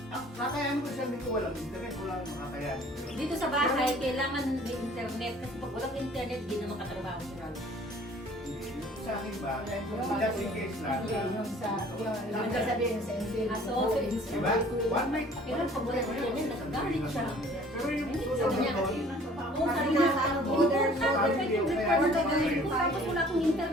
Kakayanin mo isang linggo, walang internet, walang makakayanin mo yun. Dito sa bahay, kailangan may internet. Kasi pag walang internet, di na makatrabaho si Ralph. Hindi. Sa akin ba? Just in case lang. Yung sa, yung sasabihin sa Ansel. Ah, so, Diba? One night. Kailan pag walang internet, nagagalit siya. Pero yung Sabi susunod niya, doon, Oo, sabi niya, importante yung record na ganito. Tapos wala akong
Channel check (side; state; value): both; normal; correlation 0.52